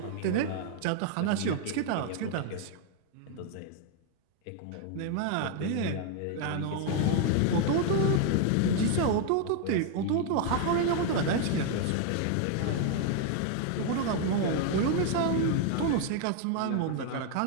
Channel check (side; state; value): both; different; correlation 0.00